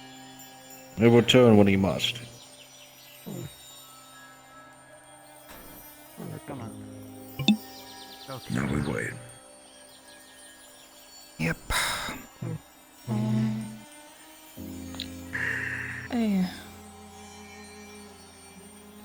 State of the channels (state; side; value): identical; both; correlation 1.00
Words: He'll return when he must. Now we wait. Yep. Hey.